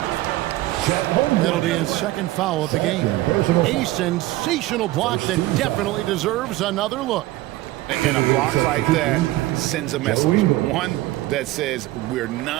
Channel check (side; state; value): left; quieter; 17.4 dB